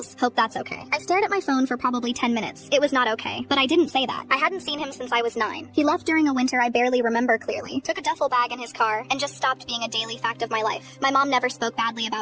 Hope that's okay. I stared at my phone for probably 10 minutes. It was not okay, but I didn't say that. I hadn't seen him since I was 9. He left during a winter I barely remember clearly, took a duffel bag in his car, and just stopped being a daily fact of my life. My mom never spoke badly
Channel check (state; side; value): identical; both; correlation 1.00